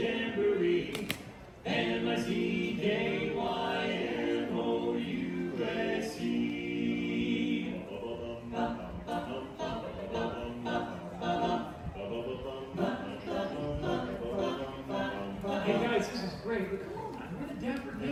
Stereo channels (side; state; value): both; identical; correlation 1.00